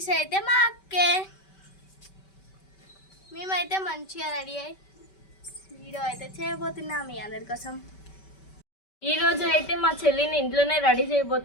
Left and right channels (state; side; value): late; right; 5.2 ms